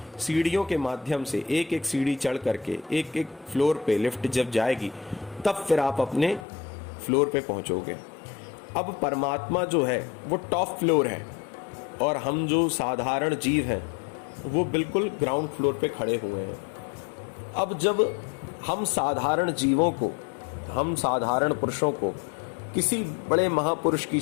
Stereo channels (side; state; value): right; drops out; at 6.5 s